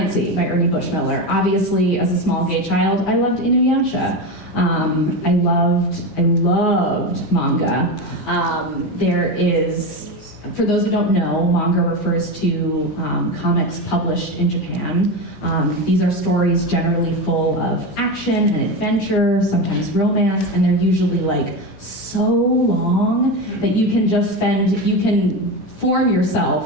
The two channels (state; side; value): normal; both; correlation 0.19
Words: by Ernie Bushmiller. Obviously, as a small gay child, I loved Inuyasha. I loved manga. There is, for those who don't know, manga refers to comics published in Japan. These are stories generally full of action and adventure, sometimes romance, and they're usually so long that you can form